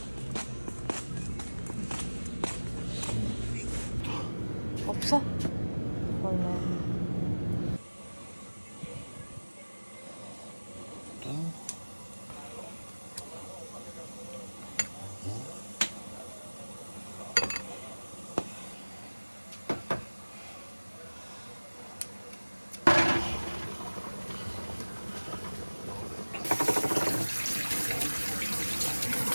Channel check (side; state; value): both; inverted; correlation -1.00